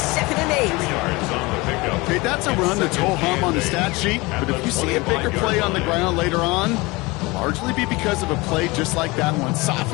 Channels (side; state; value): right; quieter; 23.6 dB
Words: and 8. Okay, that's a run that's ho-hum on the stat sheet, but if you see a bigger play on the ground later on, it'll largely be because of a play just like that one,